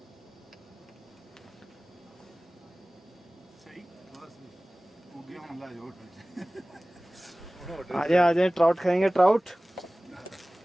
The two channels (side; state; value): both; normal; correlation 0.98